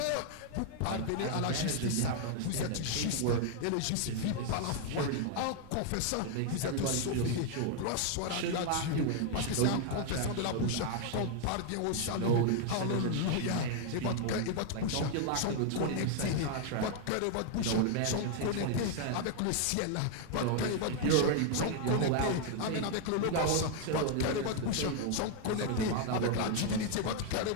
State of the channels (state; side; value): different; both; correlation 0.00